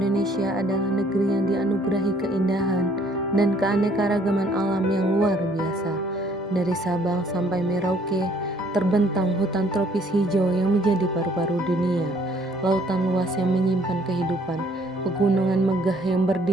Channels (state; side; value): normal; both; correlation 0.61